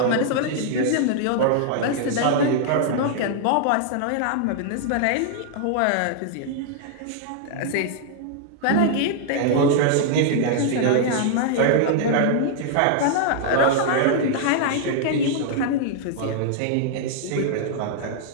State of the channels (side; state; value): both; different; correlation -0.01